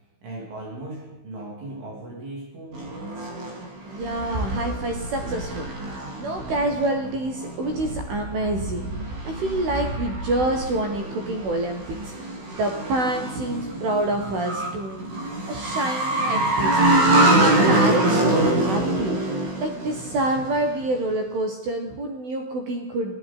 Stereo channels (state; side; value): late; left; 16 ms